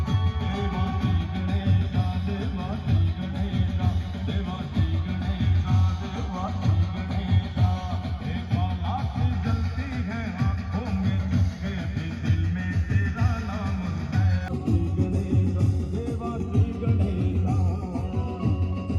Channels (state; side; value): identical; both; correlation 1.00